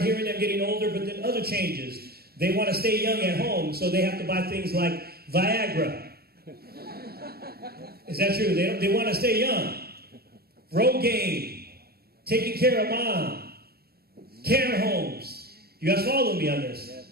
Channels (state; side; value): late; left; 0.45 ms